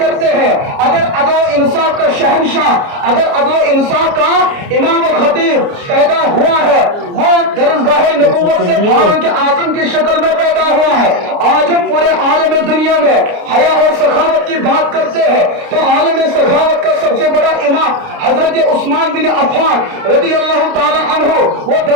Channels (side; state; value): left; late; 29 ms